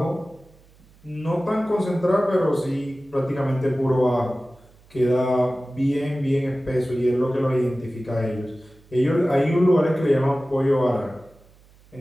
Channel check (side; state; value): right; noise; hum, 28 dB below the sound